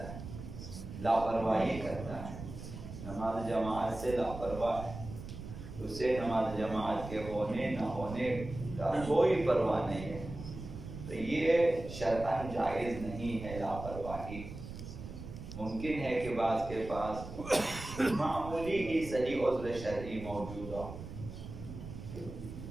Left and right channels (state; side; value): noise; right; rumble, 10 dB below the sound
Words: ہے، لاپرواہی کرتا ہے، نماز جماعت سے لاپرواہ ہے، اسے نماز جماعت کے ہونے نہ ہونے کا کوئی پرواہ نہیں ہے، تو یہ شرعاً جائز نہیں ہے لاپرواہی۔ ممکن ہے کہ بعض کے پاس معمولی ہی صحیح عذر شرعی موجود ہو،